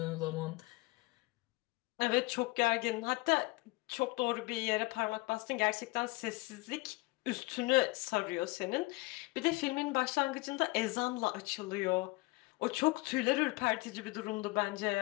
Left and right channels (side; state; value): right; quieter; 23.1 dB